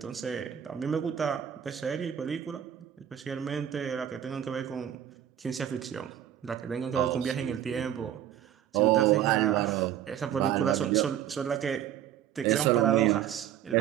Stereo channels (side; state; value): left; quieter; 10.5 dB